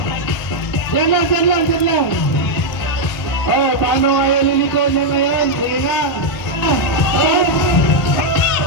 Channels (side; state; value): right; late; 1.3 ms